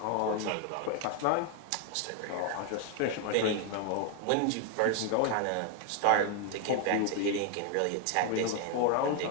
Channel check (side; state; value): both; different; correlation 0.01